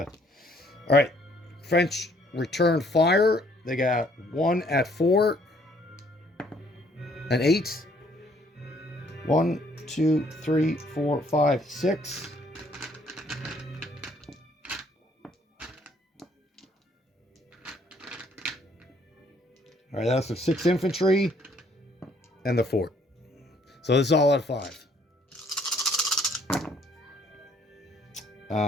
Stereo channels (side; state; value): both; normal; correlation 0.64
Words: All right. French return fire. They got 1 at 4. An 8. 1, 2, 3, 4, 5, 6. All right, that's the 6 infantry and the fort. So this is all at 5.